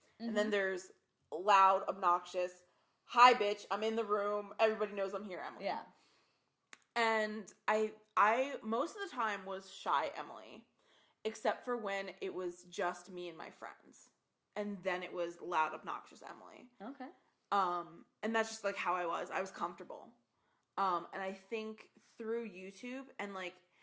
And then there's loud, obnoxious, hi bitch, I'm in the room, everybody knows I'm here Emily. Yeah. And I most of the time was shy Emily, except for when it was just me and my friends. And then it was loud, obnoxious Emily. Okay. And that's just like how I was comfortable. And I think through YouTube and like,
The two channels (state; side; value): identical; both; correlation 1.00